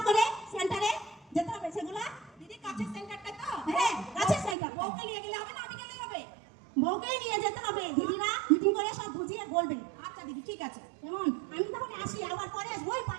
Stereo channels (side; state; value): left; drops out; at 4.5 s